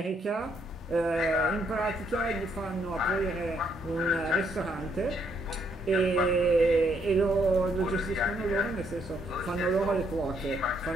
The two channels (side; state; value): both; normal; correlation 0.72